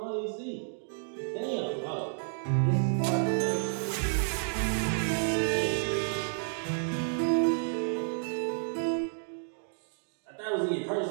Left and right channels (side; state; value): left; silent; digital silence